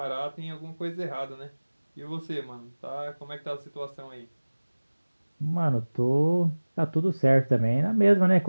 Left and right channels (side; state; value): both; inverted; correlation -1.00